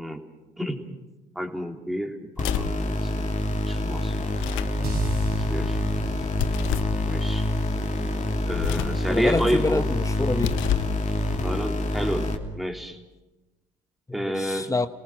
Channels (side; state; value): both; normal; correlation 0.81